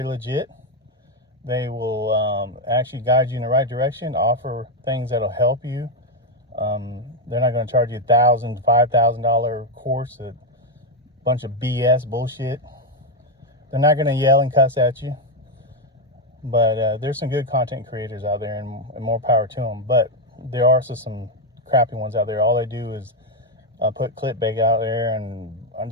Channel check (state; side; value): normal; both; correlation 0.05